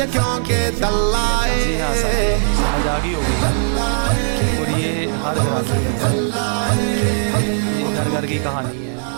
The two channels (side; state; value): left; silent; digital silence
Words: کیونکہ دلائے. جی ہاں سر، سمجھ آ گئی ہوگی. اور یہ ہر گھر کی کہانی ہے.